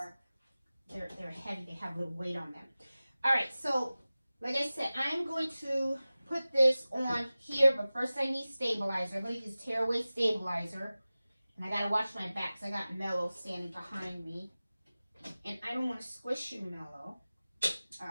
they're heavy, they have a little weight on them. All right, so, like I said, I'm going to put this on here, but first I need stabilizer. I'm going to use tearaway stabilizer. And I got to watch my back because I got Mellow standing behind me. And I don't want to squish you, Mellow. All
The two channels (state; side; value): inverted; both; correlation -0.97